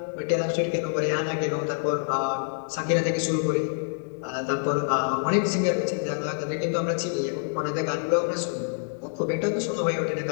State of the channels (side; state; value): right; silent; digital silence